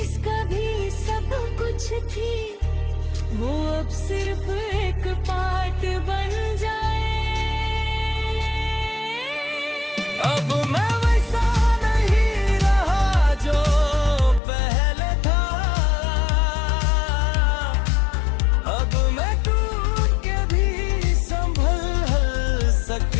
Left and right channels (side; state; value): right; drops out; at 14.4 s